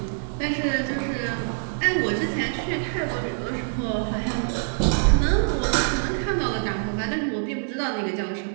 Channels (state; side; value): silent; left; digital silence